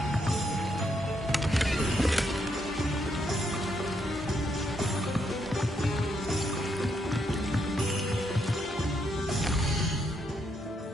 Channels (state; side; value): normal; both; correlation 0.77